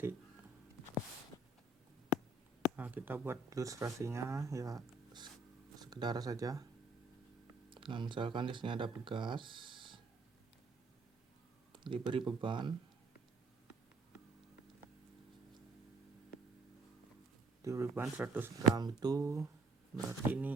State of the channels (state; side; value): quieter; left; 3.0 dB